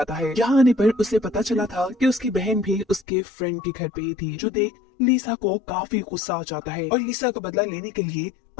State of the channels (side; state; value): right; drops out; at 3.1 s